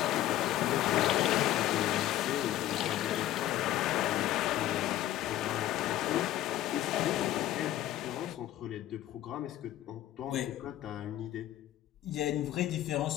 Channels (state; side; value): quieter; right; 13.7 dB